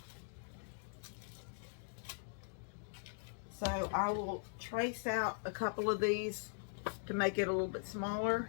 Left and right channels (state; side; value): silent; right; digital silence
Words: So I will trace out a couple of these to make it a little bit smaller,